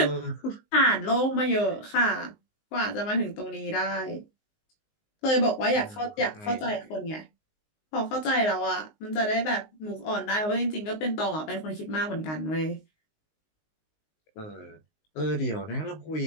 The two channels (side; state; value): right; late; 19 ms